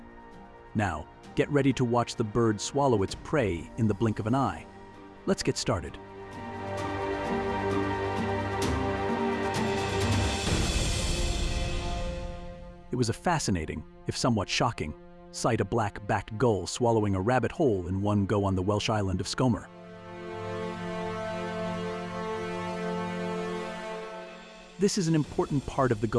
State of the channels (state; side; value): identical; both; correlation 1.00